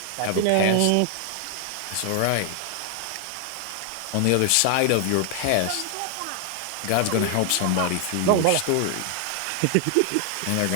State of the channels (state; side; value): different; both; correlation 0.00